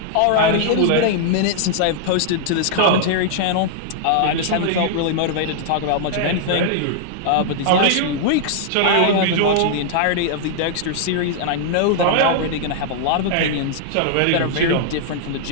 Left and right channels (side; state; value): both; different; correlation -0.01